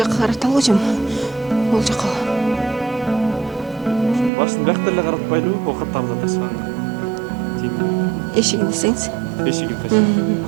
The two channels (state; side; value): drops out; left; at 4.3 s